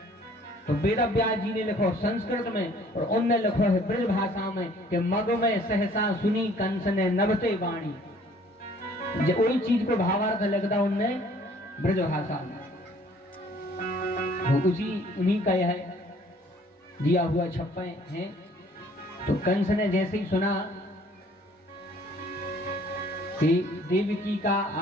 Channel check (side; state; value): both; normal; correlation 0.57